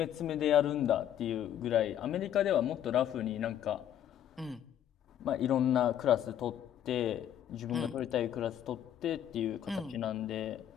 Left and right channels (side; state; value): right; quieter; 10.6 dB